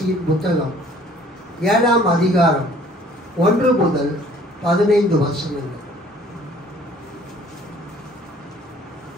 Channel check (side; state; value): both; normal; correlation 0.55